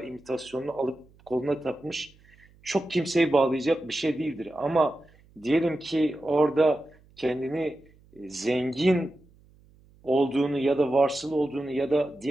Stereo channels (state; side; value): noise; right; hum, 28 dB below the sound